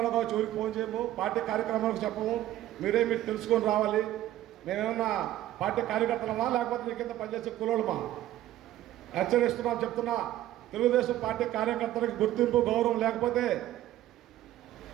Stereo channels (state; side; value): quieter; left; 13.9 dB